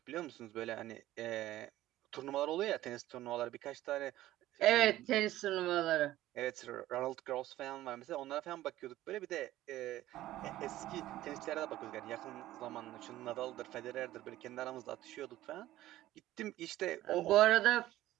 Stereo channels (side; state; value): left; quieter; 14.9 dB